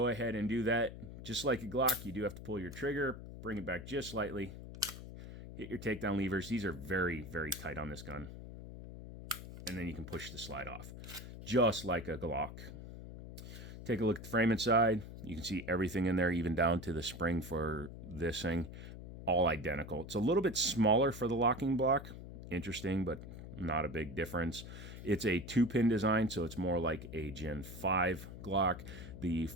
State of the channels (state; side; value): noise; left; hum, 12 dB below the sound